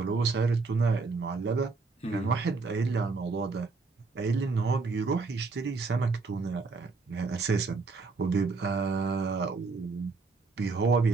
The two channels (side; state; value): left; quieter; 4.1 dB